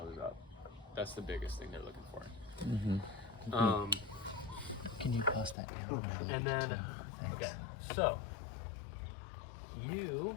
up. That's the biggest thing they're looking for. Can you pass that down? And then, okay, so you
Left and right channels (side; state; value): right; drops out; at 5.6 s